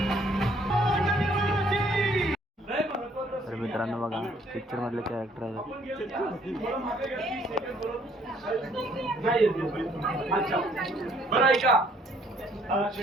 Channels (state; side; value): normal; both; correlation 0.63